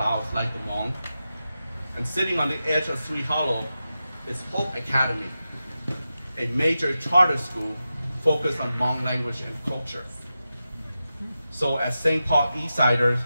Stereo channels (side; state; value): both; inverted; correlation -0.91